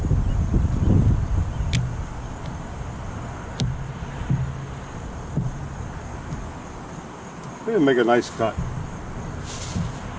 They make a nice cut.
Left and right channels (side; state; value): both; identical; correlation 1.00